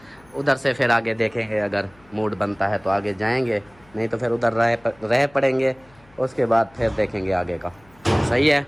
उधर से फिर आगे देखेंगे, अगर मूड बनता है तो आगे जाएंगे, नहीं तो फिर उधर रह पड़ेंगे, उसके बाद फिर देखेंगे आगे का। सही है?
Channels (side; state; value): left; noise; hum, 29 dB below the sound